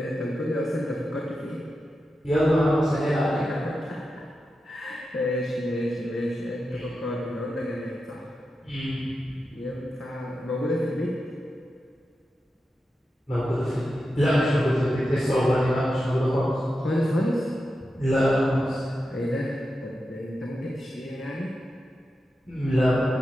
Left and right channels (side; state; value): both; normal; correlation 0.90